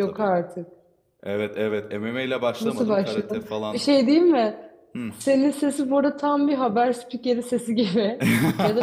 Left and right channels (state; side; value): identical; both; correlation 1.00